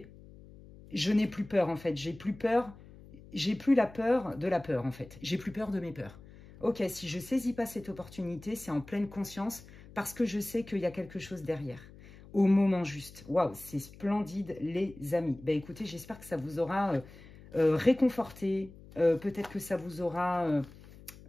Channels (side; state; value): left; noise; hum, 20 dB below the sound